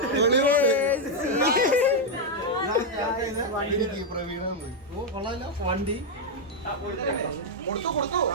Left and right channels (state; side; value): normal; both; correlation 0.01